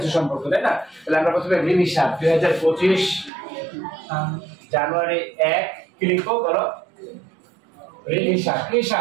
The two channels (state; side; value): drops out; left; at 3.3 s